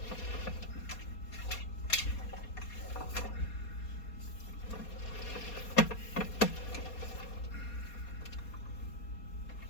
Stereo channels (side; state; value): right; late; 4.2 ms